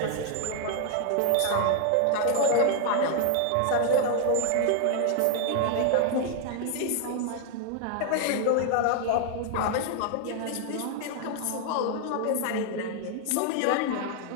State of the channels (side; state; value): both; different; correlation 0.00